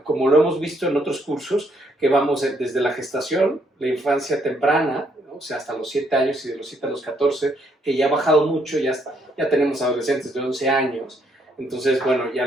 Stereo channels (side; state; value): both; normal; correlation 0.71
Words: como lo hemos visto en otros cursos, que vamos desde la gestación, la infancia temprana, ¿no? O sea, hasta los 7 años y de los 7 a los 14, que ya ha bajado mucho, ya tenemos adolescentes de 11 años, entonces, bueno, ya